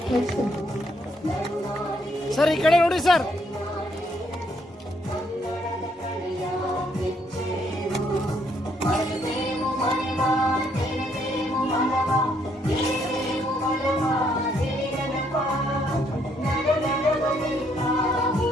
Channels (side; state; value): both; normal; correlation 0.71